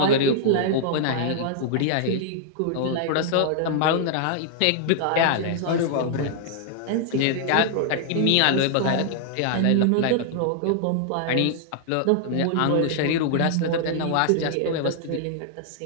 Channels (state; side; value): different; both; correlation -0.01